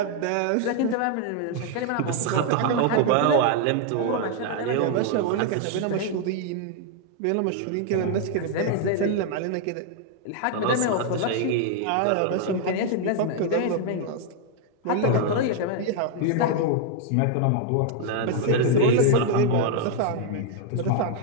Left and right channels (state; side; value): different; both; correlation 0.00